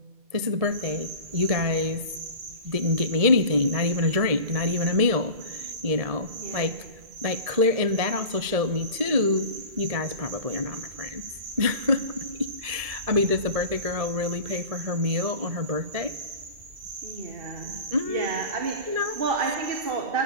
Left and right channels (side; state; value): left; late; 1.8 ms